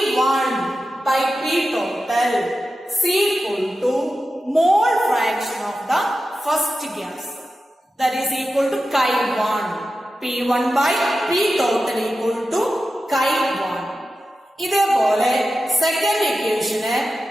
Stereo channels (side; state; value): both; normal; correlation 0.92